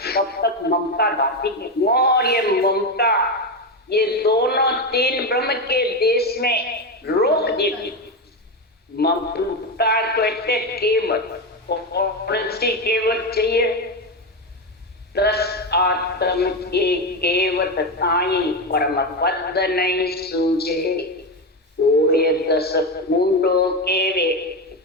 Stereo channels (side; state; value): both; normal; correlation 0.13